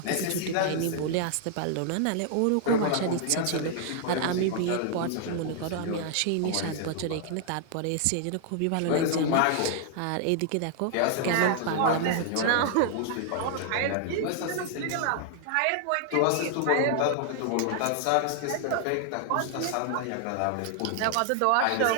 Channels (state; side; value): different; both; correlation 0.00